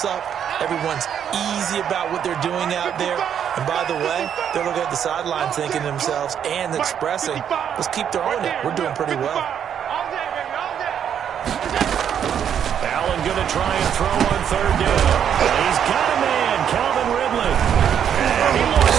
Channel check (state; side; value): quieter; left; 8.8 dB